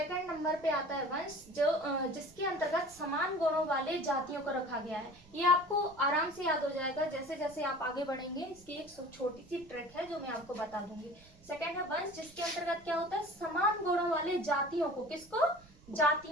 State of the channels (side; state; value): right; noise; rumble, 25 dB below the sound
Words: नंबर पे आता है वंश, जो जिसके अंतर्गत समान गुणों वाले जातियों को रखा गया है। ये आपको आराम से याद हो जाएगा जैसे जैसे आप आगे बढ़ेंगे। इसकी एक छोटी सी ट्रिक है जो मैं आपको बता दूंगी। सेकंड है वंश, जिसके अंतर्गत क्या होता है, समान गुणों वाले जातियों को, किसको,